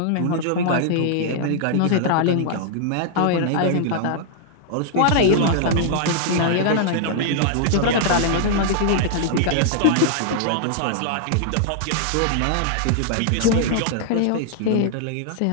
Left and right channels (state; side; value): different; both; correlation -0.01